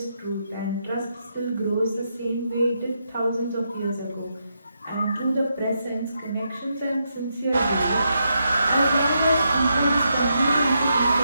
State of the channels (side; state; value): both; inverted; correlation -0.82